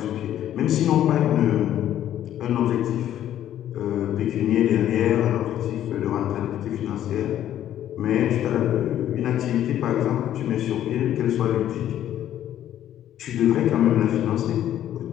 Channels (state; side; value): quieter; right; 11.5 dB